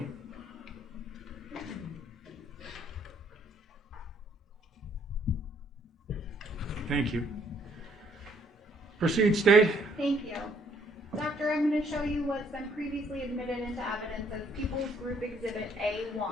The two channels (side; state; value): both; normal; correlation 0.65